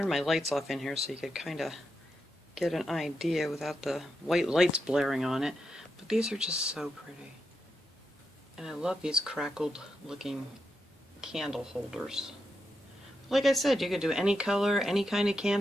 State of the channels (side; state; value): both; normal; correlation 0.85